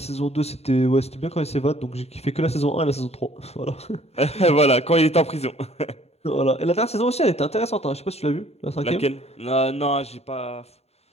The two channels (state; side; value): late; right; 0.30 ms